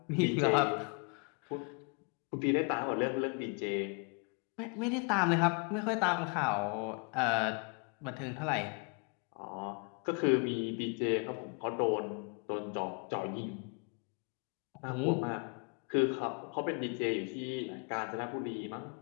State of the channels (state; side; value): quieter; right; 36.7 dB